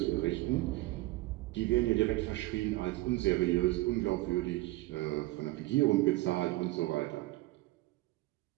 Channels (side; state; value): left; quieter; 19.2 dB